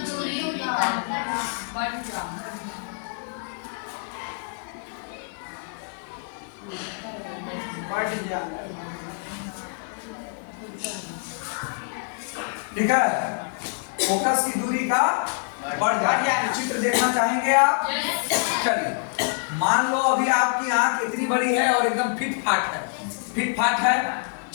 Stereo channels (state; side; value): silent; right; 58 dB below the other